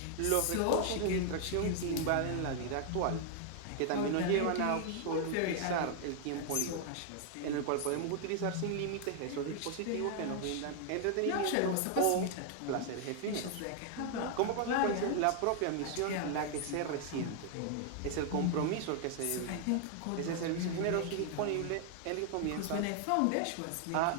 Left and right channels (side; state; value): both; different; correlation 0.00